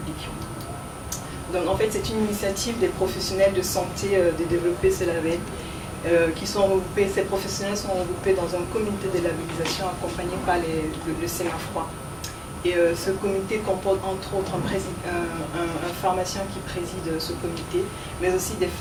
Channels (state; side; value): identical; both; correlation 1.00